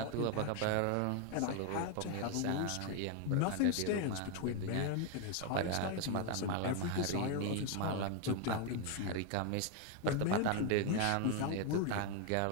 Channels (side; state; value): both; different; correlation 0.01